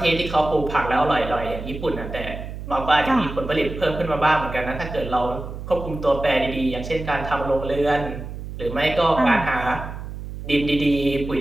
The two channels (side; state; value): right; noise; hum, 9 dB below the sound